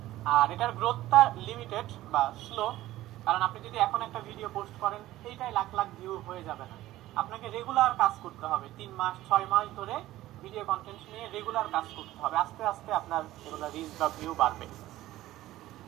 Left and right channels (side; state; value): left; quieter; 15.6 dB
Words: আর এটার গ্রোথটা লিমিটেড বা স্লো, কারণ আপনি যদি এখন একটা ভিডিও পোস্ট করেন এইটাই লাখ লাখ ভিউ হয়ে যাবে না, আপনাকে রেগুলার কাজ করতে হবে, 3 মাস 6 মাস ধরে ভিডিও কন্টেন্ট নিয়ে রেগুলার কাজ করতে হবে, আস্তে আস্তে আপনার এগুলো রিচ বা ভিউ বাড়বে।